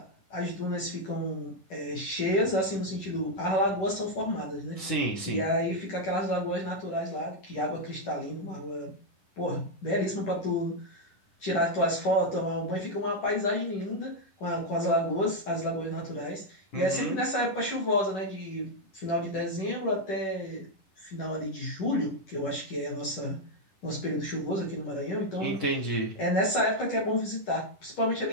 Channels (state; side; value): late; right; 10 ms